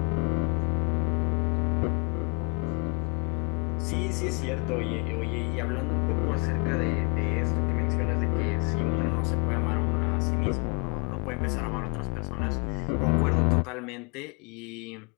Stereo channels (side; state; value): right; quieter; 34.3 dB